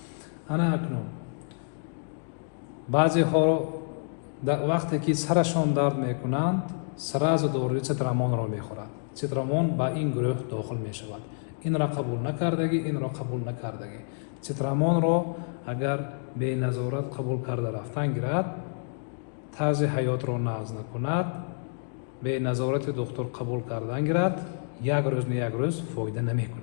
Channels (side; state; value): right; silent; digital silence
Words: ана акнун баъзеҳоро вақте ки сарашон дард мекунанд сразу дорои цитрамонро мехӯрад. цитрамон ба ин гурӯҳ дохил мешавад. инро қабул накардагӣ, инро қабул накардагӣ. цитрамонро агар беназорат қабул карда рафтан гирад, тарзи ҳаётро нағз накунад, беназорати духтур қабул кардан гирад, як рӯз фоида